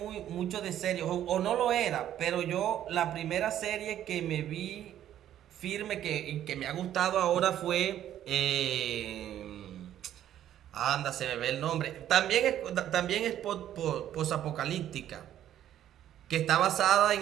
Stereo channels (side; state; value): left; quieter; 11.4 dB